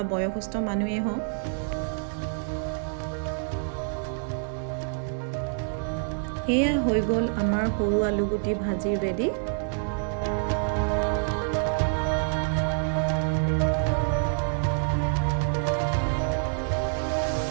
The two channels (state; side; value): silent; left; 60 dB below the other